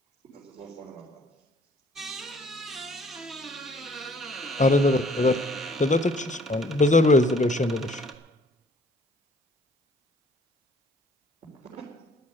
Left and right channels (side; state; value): both; normal; correlation 0.58